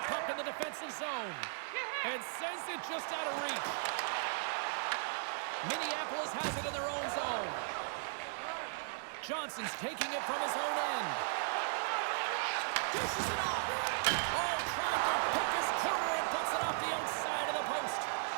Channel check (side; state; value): left; silent; digital silence